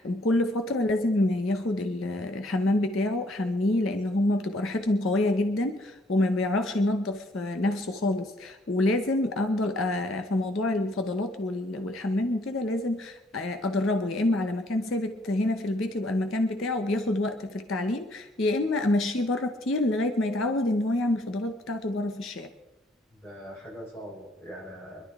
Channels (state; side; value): normal; both; correlation 0.66